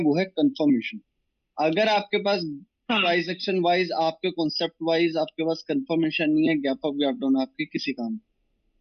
है कंफर्मेशन। अगर आपके पास हाँ। प्राइस एक्शन वाइज, आपके कॉन्सेप्ट वाइज आपके पास कंफर्मेशन नहीं है, गैप अप गैप डाउन आपके किसी काम में।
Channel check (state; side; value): identical; both; correlation 1.00